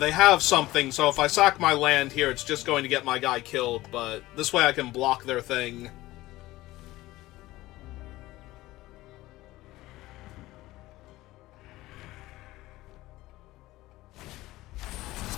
have something, so if I sack my land here, it's just going to get my guy killed, but this way I can block their thing.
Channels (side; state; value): right; quieter; 17.7 dB